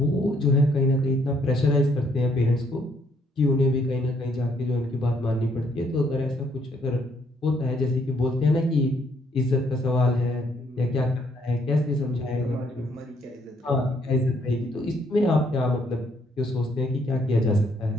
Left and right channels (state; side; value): normal; both; correlation 0.69